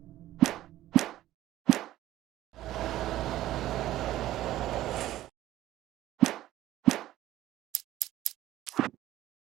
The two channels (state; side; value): quieter; left; 14.4 dB